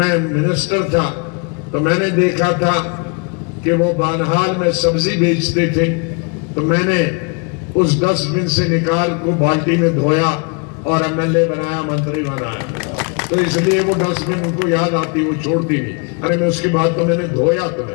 मिनिस्टर था, तो मैंने देखा था कि वो बानहाल में सब्जी बेचते थे, तो मैंने उस डस्टबिन से निकाल को बाल्टी में धोया और एमएलए बनाया, मंत्री बनाया। तो इसलिए वो डस्टबिन उनको याद आती, वो छोड़ती नहीं। अरे मैं उसके बाद तो मैंने धोया,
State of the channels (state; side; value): quieter; right; 34.2 dB